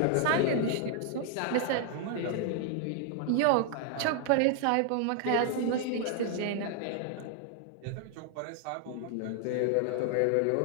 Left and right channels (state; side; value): different; both; correlation 0.00